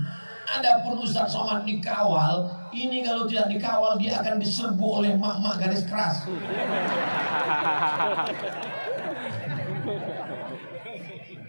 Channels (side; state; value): both; inverted; correlation -1.00